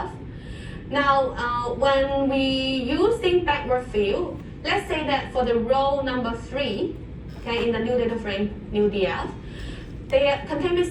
Now, when we using backward fill, let's say that for the row number 3, okay, in the new data frame, new DF, they contain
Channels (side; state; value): both; identical; correlation 1.00